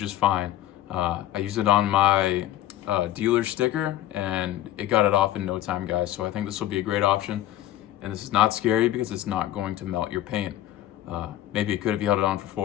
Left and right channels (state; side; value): quieter; right; 13.3 dB